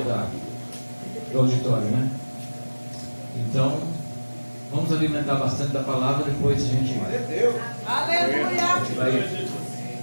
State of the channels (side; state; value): both; inverted; correlation -1.00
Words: fora do auditório, né? Então, vamos alimentar bastante da palavra, depois a gente vai. Aleluia! A gente vai,